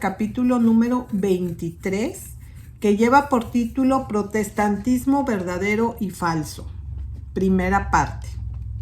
capítulo número 23, que lleva por título Protestantismo verdadero y falso. Primera parte.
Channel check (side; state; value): both; identical; correlation 1.00